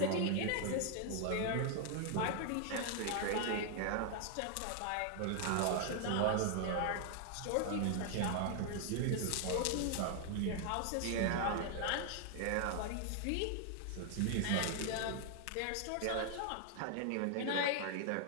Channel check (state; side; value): different; both; correlation 0.00